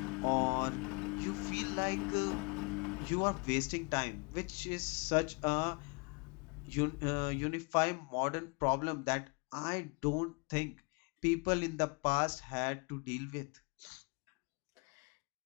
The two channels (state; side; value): quieter; right; 32.4 dB